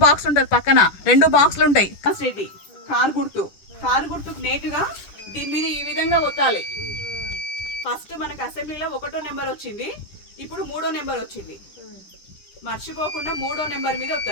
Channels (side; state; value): right; late; 10 ms